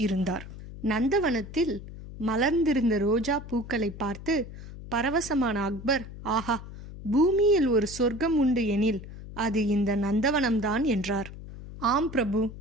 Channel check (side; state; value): left; noise; hum, 13 dB below the sound